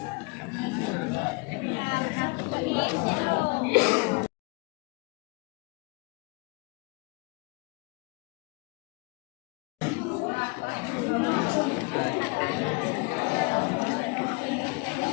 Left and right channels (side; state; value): right; quieter; 29.3 dB